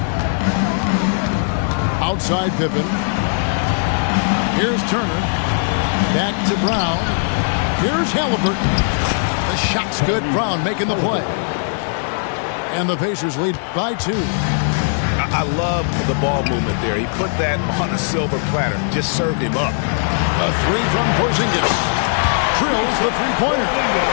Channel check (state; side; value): silent; right; digital silence